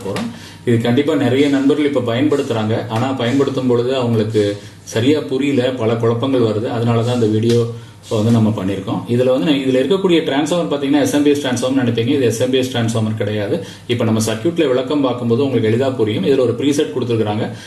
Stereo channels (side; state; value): both; identical; correlation 1.00